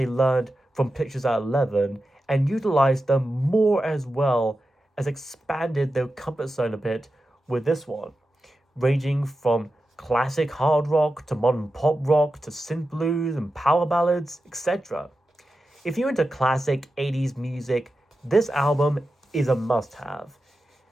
learned from Pictures at 11 and utilized them more as well as expanded their comfort zone a bit with this one, ranging from classic hard rock to modern pop rock to synth blues and power ballads, etc. If you're into classic 80s music, this album is a must-have.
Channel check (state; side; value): normal; both; correlation 0.91